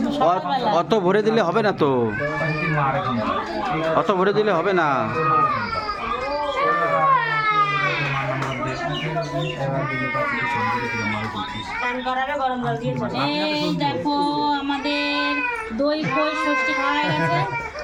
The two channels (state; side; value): identical; both; correlation 1.00